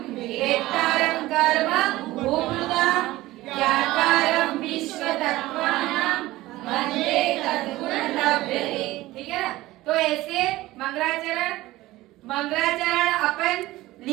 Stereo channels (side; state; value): left; quieter; 17.6 dB